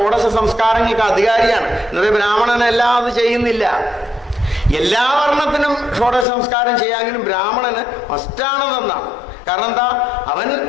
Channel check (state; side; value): drops out; right; at 6.2 s